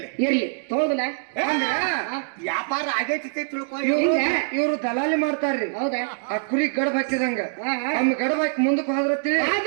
ಇರ್ಲಿ ತಗೋದಿಲ್ಲ. ವ್ಯಾಪಾರ ಆಗೈತಿ ತಿಳ್ಕೊ. ಇವ್ರು ದಲಾಲಿ ಮಾಡ್ತಾರ್ರಿ. ಹೌದಾ? ಆ ಕುರಿ ಗಡಬ್ ಹಾಕಿದಂಗ ಗಡಬ್ ಹಾಕಿ ಮುಂದಕ್ಕೆ ಹೋದ್ರತಿ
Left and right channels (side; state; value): left; silent; digital silence